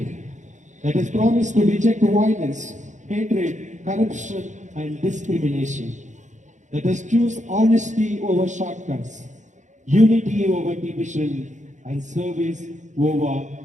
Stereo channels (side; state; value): left; late; 0.35 ms